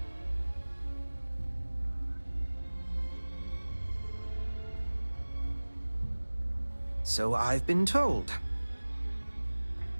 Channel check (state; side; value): inverted; both; correlation -1.00